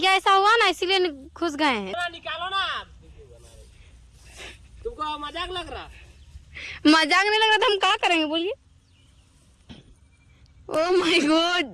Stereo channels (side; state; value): both; identical; correlation 1.00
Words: ऐसा हुआ ना, इसीलिए घुस गए हैं। निकालो ना, तुमको मजाक लग रहा? मजाक नहीं लग रहा था, हम क्या करेंगे बोलिए। ओह माय गॉड,